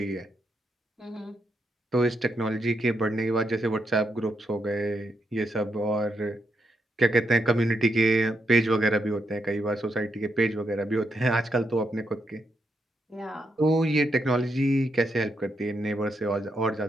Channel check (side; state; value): both; normal; correlation 0.80